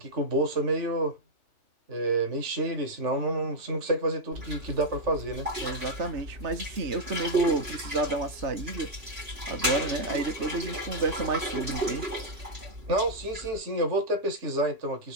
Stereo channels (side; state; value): left; late; 2.8 ms